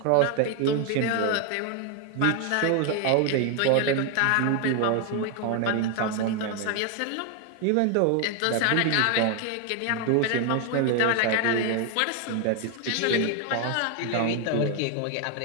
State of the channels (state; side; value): different; both; correlation 0.01